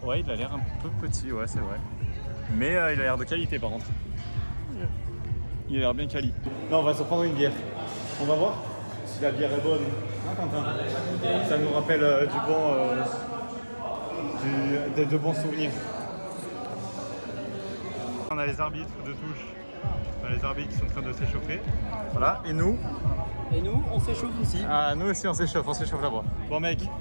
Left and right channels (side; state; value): both; inverted; correlation -1.00